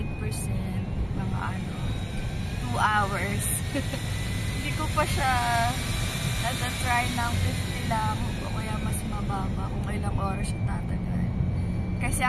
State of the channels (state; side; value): identical; both; correlation 1.00